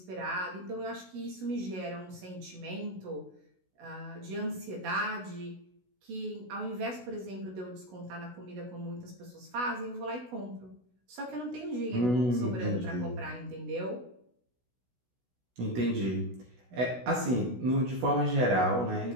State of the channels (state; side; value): late; left; 16 ms